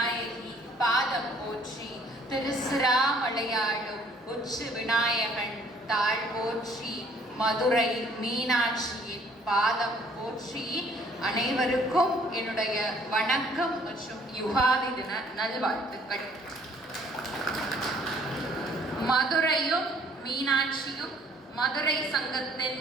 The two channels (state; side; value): normal; both; correlation 0.59